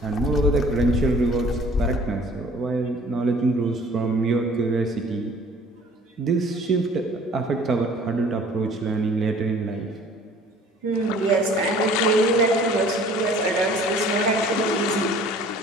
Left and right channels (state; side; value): normal; both; correlation 0.51